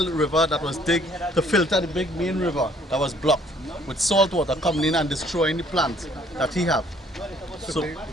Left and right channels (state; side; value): normal; both; correlation 0.61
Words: river that was digged to filter the big main river that was blocked with salt water coming in and destroying the plants that he have. So